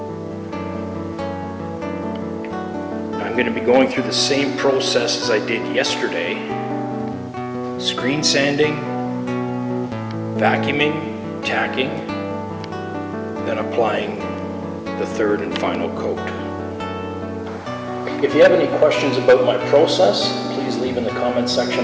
I'm going to be going through the same process as I did yesterday. Screen sanding, vacuuming, tacking, then applying the third and final coat. If you have any questions about my process, please leave in the comment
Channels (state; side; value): identical; both; correlation 1.00